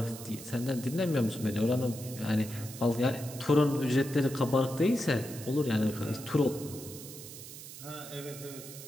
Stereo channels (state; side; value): noise; right; hiss, 13 dB below the sound